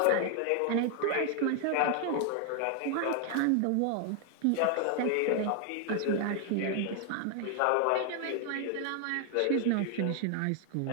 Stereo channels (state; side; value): different; both; correlation 0.00